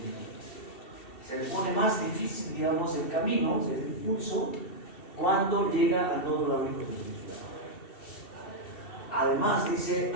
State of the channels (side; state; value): right; late; 2.7 ms